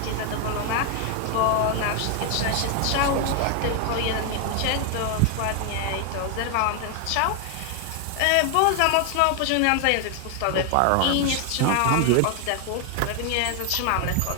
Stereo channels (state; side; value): different; both; correlation 0.00